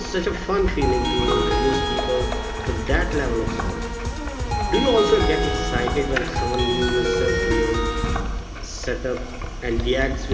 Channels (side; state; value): both; identical; correlation 1.00